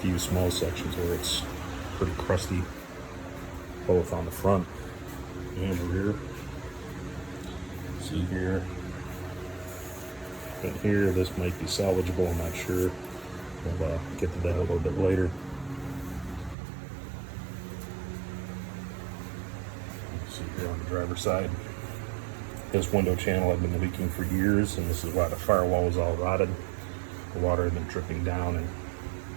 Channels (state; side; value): drops out; left; at 16.6 s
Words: few small sections where it's pretty crusty, both on the front and the rear. See here and here, this might be salvageable, I'm not sure. We'll get to that a little bit later. See here on the driver's side, this window channel had been leaking for years, and this is why the firewall was all rotted. The water had been dripping down and